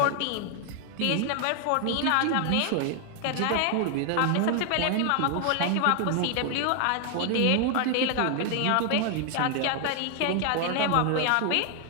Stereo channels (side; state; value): both; different; correlation 0.00